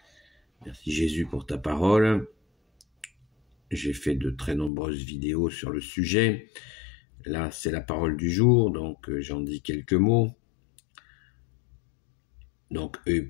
Merci Jésus pour ta parole. J'ai fait de très nombreuses vidéos sur le sujet. Là, c'est la parole du jour, donc j'en dis quelques mots. Donc, œil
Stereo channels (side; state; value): right; drops out; at 4.7 s